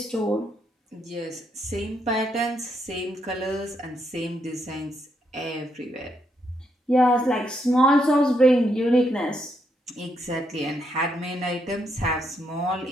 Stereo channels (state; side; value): normal; both; correlation 0.77